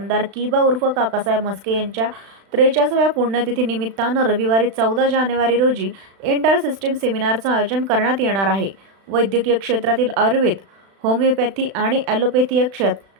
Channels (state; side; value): late; left; 36 ms